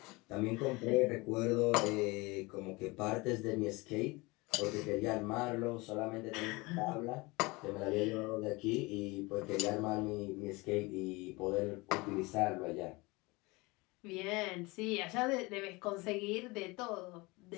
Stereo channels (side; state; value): right; quieter; 24.3 dB